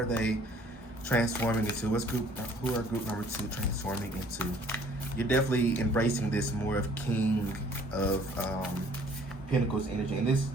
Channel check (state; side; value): normal; both; correlation 0.57